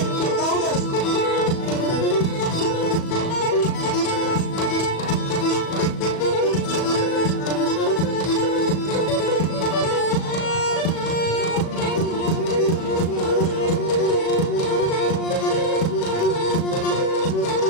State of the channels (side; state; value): right; late; 37 ms